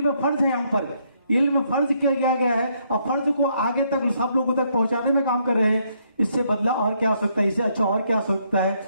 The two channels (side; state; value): both; inverted; correlation -0.72